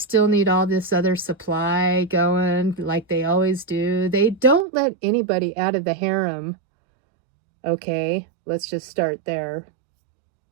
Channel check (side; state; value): left; drops out; at 4.7 s